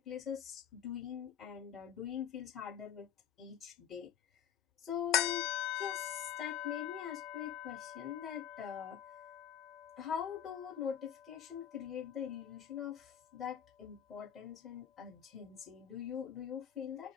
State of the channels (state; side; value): quieter; right; 9.8 dB